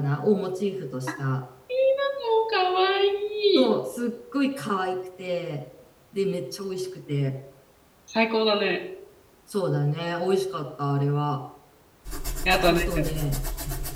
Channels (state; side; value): identical; both; correlation 1.00